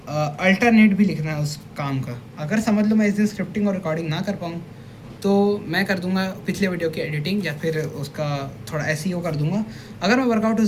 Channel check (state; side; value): identical; both; correlation 1.00